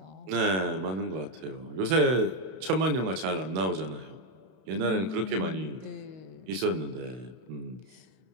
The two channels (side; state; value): left; late; 32 ms